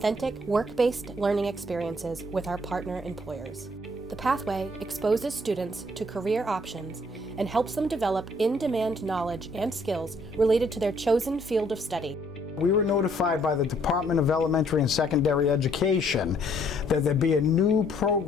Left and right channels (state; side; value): normal; both; correlation 0.65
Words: work-based learning experiences with our partner employers. The pathway exposes students to career options and helps them develop in-demand knowledge and skills related to their chosen field of study. We were notified by the Department of Elementary and Secondary Education that there'd be a new